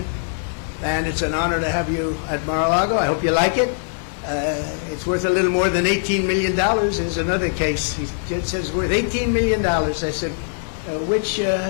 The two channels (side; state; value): right; silent; 65 dB below the other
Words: And it's an honor to have you at Mar-a-Lago. I hope you like it. It's worth a little more than $18 million. There's another case. He says it's worth $18 million. I said,